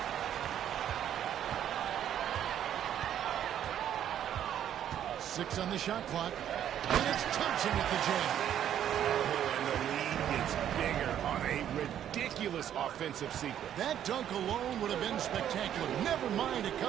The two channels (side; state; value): left; quieter; 10.3 dB